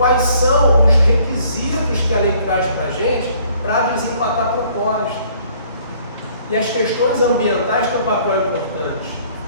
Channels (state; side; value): inverted; both; correlation -0.60